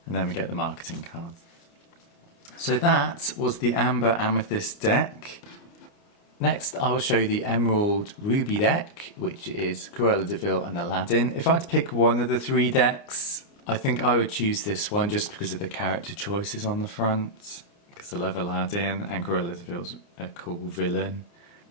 And then we get the marketing cards. So that was the Amber Amethyst deck. Next I will show you the Emerald Ruby deck, which is Cruella de Vil and Aladdin. If I had to pick one of the three decks, I think I would choose this one just because of the character choices on the front. Because I love Aladdin and Cruella de Vil's a cool villain.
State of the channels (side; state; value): right; late; 29 ms